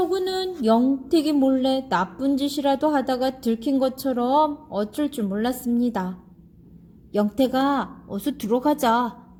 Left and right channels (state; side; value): identical; both; correlation 1.00